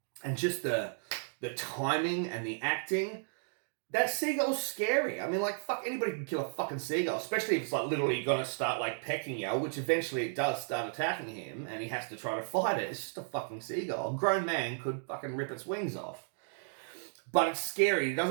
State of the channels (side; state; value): left; silent; digital silence